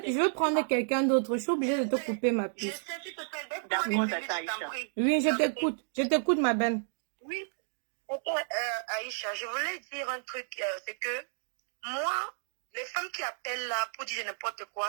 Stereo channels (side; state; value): left; silent; digital silence